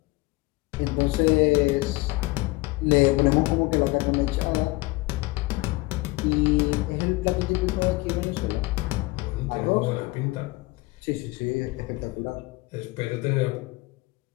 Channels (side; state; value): right; quieter; 22.1 dB